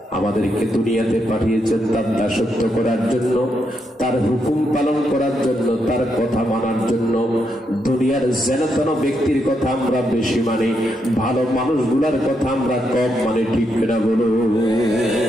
আমাদেরকে দুনিয়াতে পাঠিয়েছেন তার দাসত্ব করার জন্য, তার হুকুম পালন করার জন্য, তার কথা মানার জন্য। দুনিয়ার যেন ব্যক্তির কথা আমরা বেশি মানি, ভালো মানুষগুলার কথা আমরা কম মানি, ঠিক কিনা বলো?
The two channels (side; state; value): both; normal; correlation 0.80